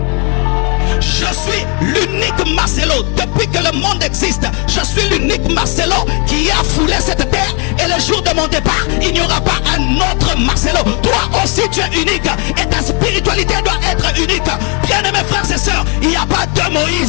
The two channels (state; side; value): quieter; right; 34.5 dB